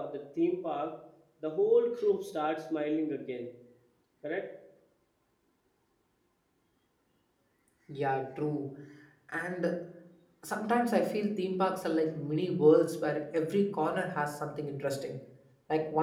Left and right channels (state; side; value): identical; both; correlation 1.00